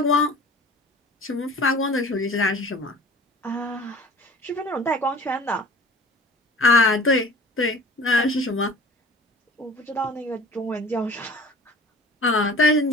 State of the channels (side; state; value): both; normal; correlation 0.45